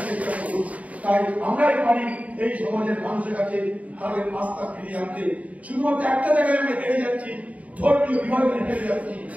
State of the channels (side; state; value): left; late; 0.069 ms